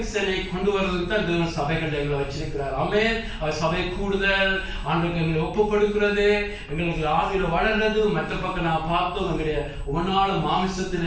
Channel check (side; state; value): both; identical; correlation 1.00